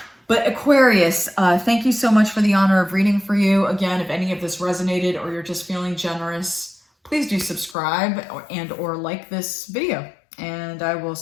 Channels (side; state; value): right; drops out; at 7.8 s